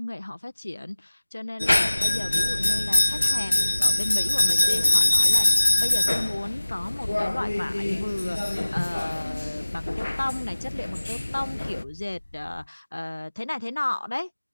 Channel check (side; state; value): both; inverted; correlation -1.00